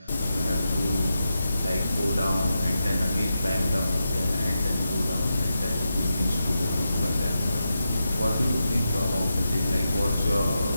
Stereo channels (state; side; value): inverted; both; correlation -0.88